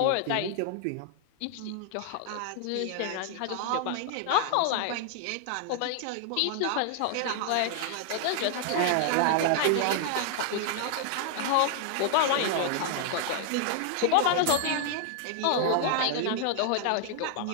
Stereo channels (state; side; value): different; both; correlation 0.00